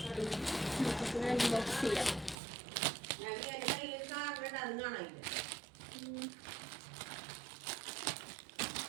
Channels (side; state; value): left; drops out; at 2.4 s